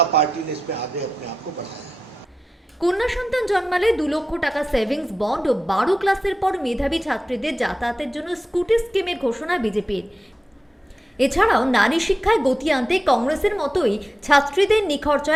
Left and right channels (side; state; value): both; normal; correlation 0.91